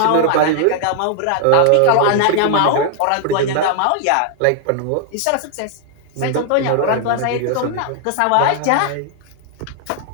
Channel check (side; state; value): both; different; correlation 0.00